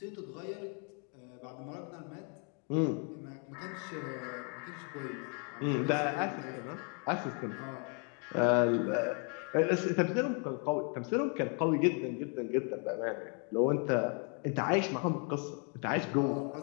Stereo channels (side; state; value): right; quieter; 38.5 dB